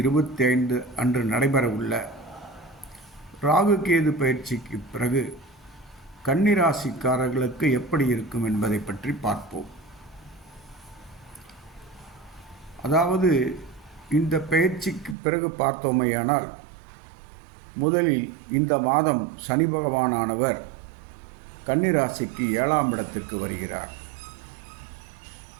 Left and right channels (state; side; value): drops out; left; at 15.2 s